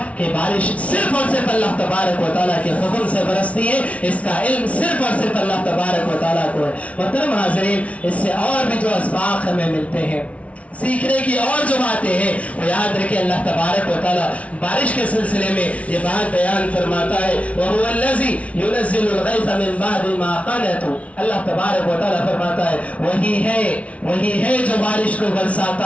کہ بارش صرف اور صرف اللہ تبارک و تعالیٰ کے حکم سے برستی ہے. اس کا علم صرف اور صرف اللہ تبارک و تعالیٰ کو ہے. محترم حاضرین, اس سے اور بھی جو اسباق ہمیں ملتے ہیں, سیکھنے کی اور جو باتیں ہیں, وہ یاد رکھیں. اللہ تبارک و تعالیٰ بارش کے سلسلے میں یہ بات بیان فرماتا ہے وَهُوَ الَّذِي يُنَزِّلُ الْغَيْثَ مِن بَعْدِ مَا قَنَطُوا. اللہ تبارک و تعالیٰ فرماتا ہے وہی ہے جو بارش کو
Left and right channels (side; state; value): right; late; 0.065 ms